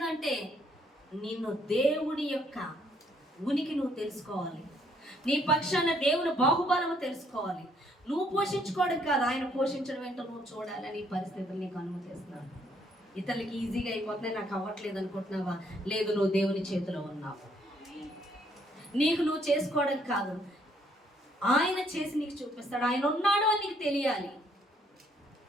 నిన్ను దేవుడి యొక్క ఉనికి నువ్వు తెలుసుకోవాలి. నీ పక్షాన దేవుని బాహుబలము తెలుసుకోవాలి. నువ్వు పోషించుకోవడం కాదు, ఆయన పోషించడం ఏంటో నువ్వు చూడాలని పరిస్థితులు నీకు అనుమతిస్తున్నాడు. ఇతరులకి ఈజీగా అయిపోతున్నాయి, నాకు అవ్వట్లేదు అనుకుంటున్నావా? లేదు, నువ్వు దేవుని చేతిలో ఉన్నావు. నీకు నువ్వు చేసుకోవడం కాదు, ఆయన చేసి నీకు చూపిస్తాడు. ఆయన ఉన్నాడు అని నీకు తెలియాలి.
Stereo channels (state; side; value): normal; both; correlation 0.68